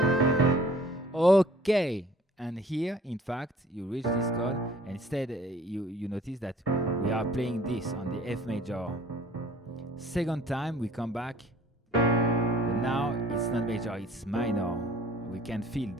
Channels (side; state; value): both; normal; correlation 0.52